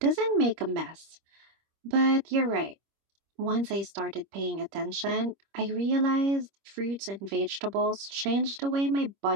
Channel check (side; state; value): left; late; 25 ms